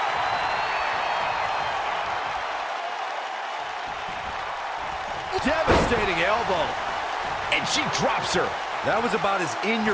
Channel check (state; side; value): identical; both; correlation 1.00